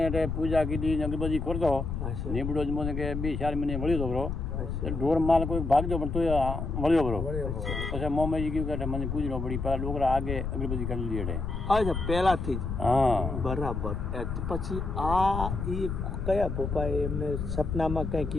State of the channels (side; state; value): left; noise; rumble, 3 dB below the sound